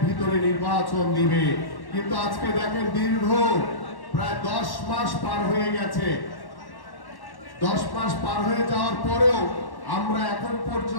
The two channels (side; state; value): right; late; 1.1 ms